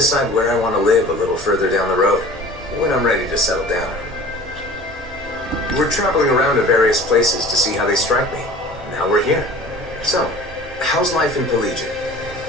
where I want to live a little further down the road, when I'm ready to settle down. We're traveling around to various places to see how they strike me. Now we're here. So, how's life in Plegian?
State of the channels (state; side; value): normal; both; correlation 0.43